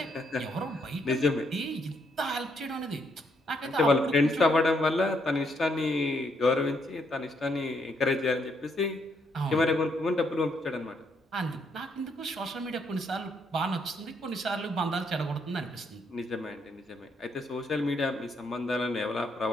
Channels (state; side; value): normal; both; correlation 0.74